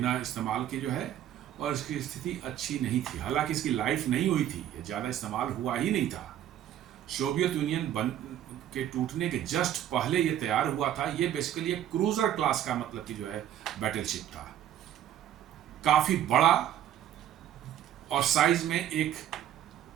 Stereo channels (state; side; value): quieter; left; 11.2 dB